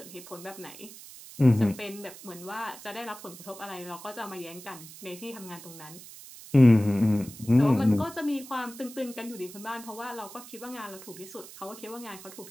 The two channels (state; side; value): noise; right; hiss, 16 dB below the sound